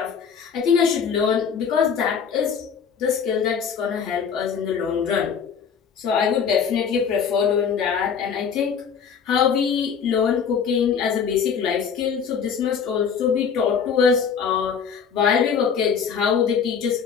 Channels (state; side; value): quieter; right; 6.8 dB